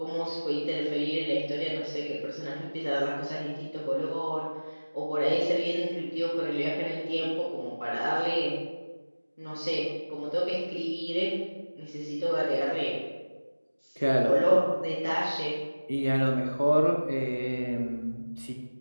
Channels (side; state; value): both; inverted; correlation -1.00